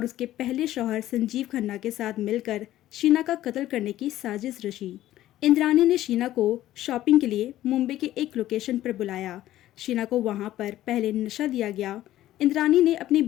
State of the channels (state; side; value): quieter; right; 14.0 dB